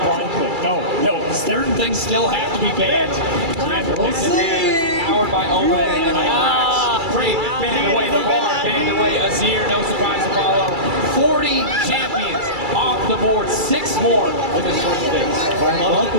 click. No, certain things still have to be banned. Powered by Owen and Climax. Great, banned away the bar, banned away Azir, no surprise to follow. 40 champions off the board, 6 more in this first phase. I love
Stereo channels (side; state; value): left; late; 2.3 ms